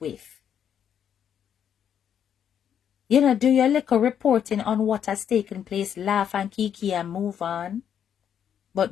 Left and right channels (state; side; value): quieter; right; 8.8 dB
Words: Do your little reporting on what has taken place, laugh and kiki and move on.